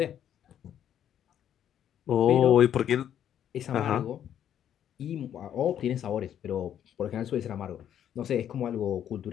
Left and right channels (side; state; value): right; quieter; 10.0 dB